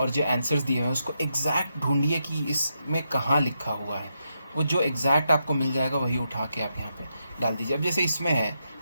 जो आंसर्स दिए हुए हैं उसको एग्जैक्ट ढूंढिए कि इसमें कहाँ लिखा हुआ है। वो जो एग्जैक्ट आपको मिल जाएगा वही उठा के आप यहाँ पे डाल दीजिए। अब जैसे इसमें है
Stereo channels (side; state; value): both; inverted; correlation -0.83